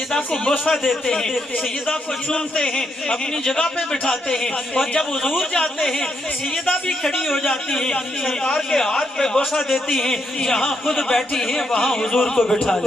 کو بوسہ دیتے ہیں، سیدہ کو چومتے ہیں، اپنی جگہ پہ بٹھاتے ہیں، اور جب حضور جاتے ہیں سیدہ بھی کھڑی ہو جاتی ہیں، سرکار کے ہاتھ پہ بوسہ دیتی ہیں، جہاں خود بیٹھی ہیں وہاں حضور کو بٹھا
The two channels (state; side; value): normal; both; correlation 0.79